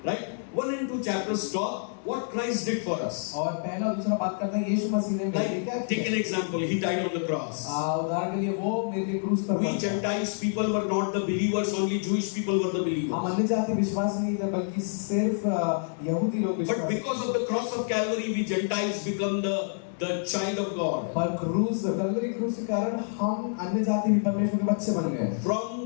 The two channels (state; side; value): silent; right; digital silence